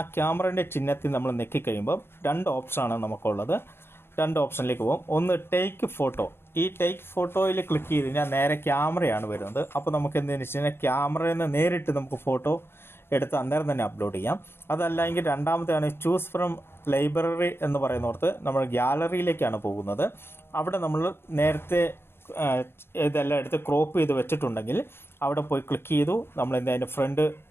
ക്യാമറയുടെ ചിഹ്നത്തിൽ നമ്മൾ ഞെക്കിക്കഴിയുമ്പോൾ 2 ഓപ്ഷനാണ് നമുക്കുള്ളത്. 2 ഓപ്ഷനിലേക്ക് പോകും. ഒന്ന് ടേക്ക് ഫോട്ടോ. ഈ ടേക്ക് ഫോട്ടോയിൽ ക്ലിക്ക് ചെയ്ത് കഴിഞ്ഞാൽ നേരെ ക്യാമറയാണ് വരുന്നത്. അപ്പോൾ നമുക്ക് എന്തെന്ന് വെച്ച് കഴിഞ്ഞാൽ ക്യാമറയിൽ നിന്ന് നേരിട്ട് നമുക്ക് ഫോട്ടോ എടുത്ത് അന്നേരം തന്നെ അപ്ലോഡ് ചെയ്യാം. അതല്ല എങ്കിൽ രണ്ടാമത്തെയാണ് ചൂസ് ഫ്രം ലൈബ്രറി എന്ന് പറയുന്നിടത്ത് നമ്മൾ ഗ്യാലറിയിലേക്കാണ് പോകുന്നത്. അവിടെ നമ്മൾ നേരത്തെ ഇതെല്ലാം എടുത്ത് ക്രോപ്പ് ചെയ്ത് വെച്ചിട്ടുണ്ടെങ്കിൽ അവിടെ പോയി ക്ലിക്ക് ചെയ്തു. നമ്മൾ അതിൻ്റെ ഫ്രണ്ട്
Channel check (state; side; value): late; right; 0.11 ms